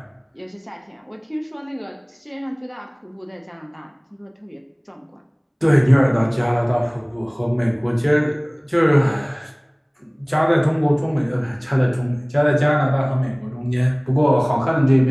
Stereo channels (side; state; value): both; identical; correlation 1.00